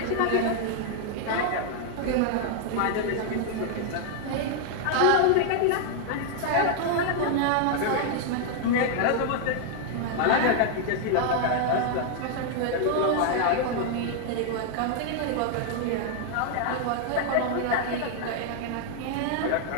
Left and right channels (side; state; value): both; different; correlation 0.00